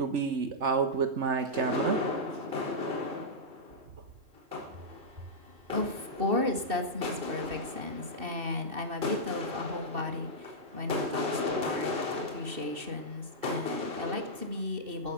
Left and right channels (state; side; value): late; left; 2.7 ms